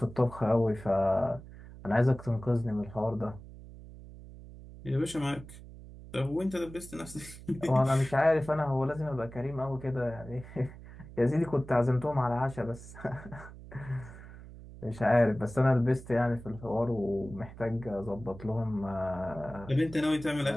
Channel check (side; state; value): right; noise; hum, 16 dB below the sound